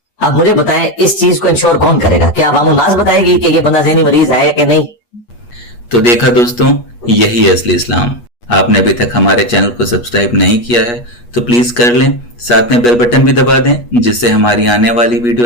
अब मुझे बताएं, इस चीज को इंश्योर कौन करेगा? क्या अवामुन नास बताएगी कि ये बंदा ज़हनी मरीज है या कि नहीं? तो देखा दोस्तों, यही है असली इस्लाम। आपने अभी तक हमारे चैनल को सब्सक्राइब नहीं किया है तो प्लीज कर लें, साथ में बेल बटन भी दबा दें जिससे हमारी आने वाली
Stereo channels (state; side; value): late; right; 8.3 ms